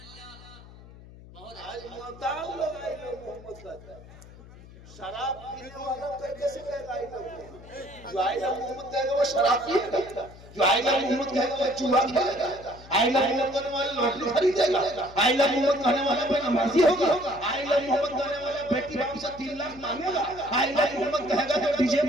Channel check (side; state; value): left; noise; hum, 19 dB below the sound